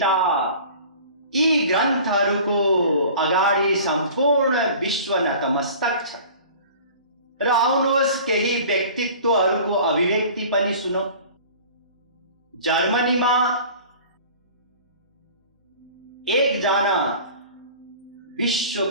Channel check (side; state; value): both; inverted; correlation -0.43